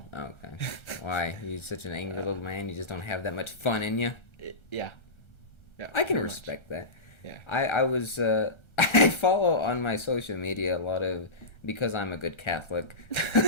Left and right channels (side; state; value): right; late; 1.3 ms